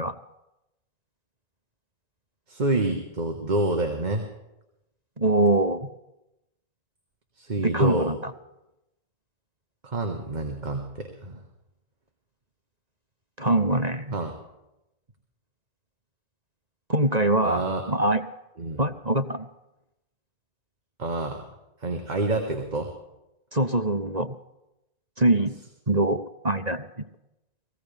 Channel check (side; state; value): left; late; 1.9 ms